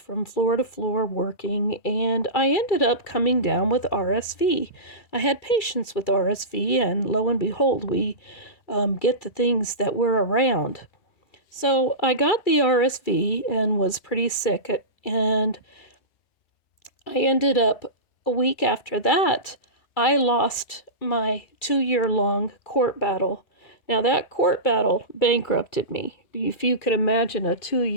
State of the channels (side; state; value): right; late; 2.3 ms